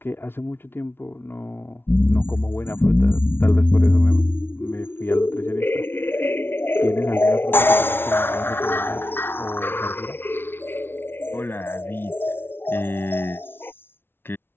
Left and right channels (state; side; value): late; right; 0.11 ms